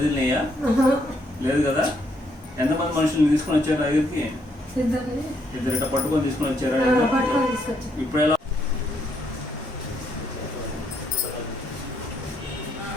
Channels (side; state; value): both; normal; correlation 0.73